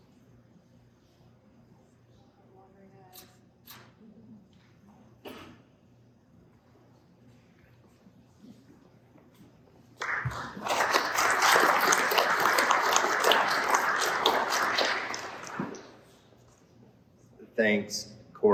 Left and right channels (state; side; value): identical; both; correlation 1.00